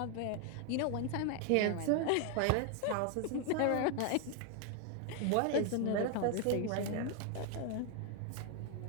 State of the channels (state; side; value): different; both; correlation 0.00